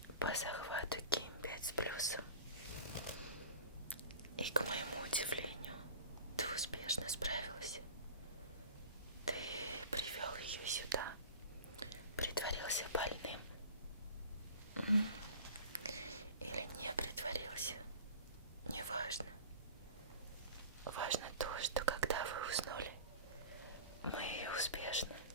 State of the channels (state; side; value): inverted; both; correlation -0.38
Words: по захвату Ким-5 с плюсом. И, к моему удивлению, ты успешно справился. Ты привел ее сюда, притворился больным. Или не притворился, неважно. Важно то, что когда вы уснули, мы ее успешно